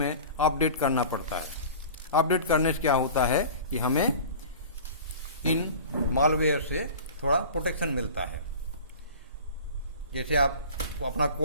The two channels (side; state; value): both; inverted; correlation -0.39